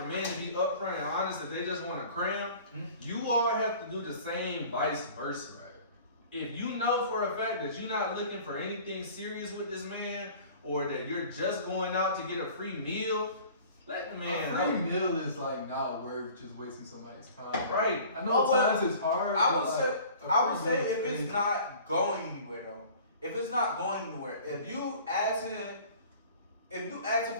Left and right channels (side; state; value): both; inverted; correlation -0.46